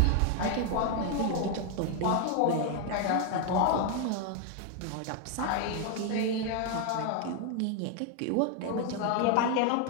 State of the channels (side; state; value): both; different; correlation 0.00